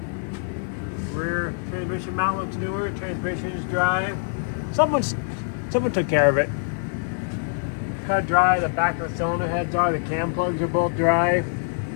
Rear transmission mount looks newer. Transmission is dry. Someone took care of it. Car dry. The back of the cylinder heads are. The cam plugs are both dry.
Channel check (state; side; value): silent; right; 62 dB below the other